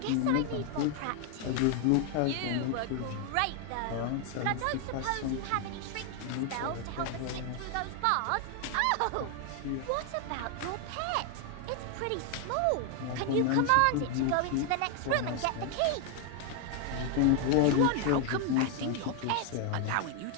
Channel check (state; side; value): different; both; correlation 0.00